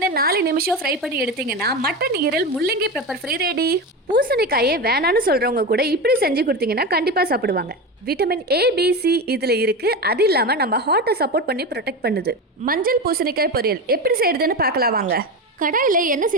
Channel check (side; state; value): both; normal; correlation 0.21